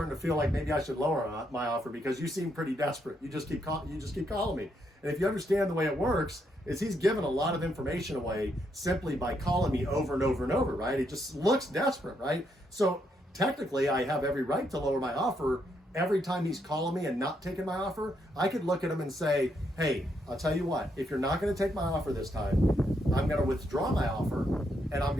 to feel like maybe I should lower my offer because you seem pretty desperate. You just keep calling me. And if you understand the way it works, is he's given a lot of information away simply by calling me over and over and over, right? It just looks desperate, right? So technically I have every right to lower my offer. Every time he's calling me and not taking my offer, I could look at him and say, hey, I'll tell you what, if you're not going to take my offer this time, I'm going to withdraw my offer and I'm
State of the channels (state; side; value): normal; both; correlation 0.77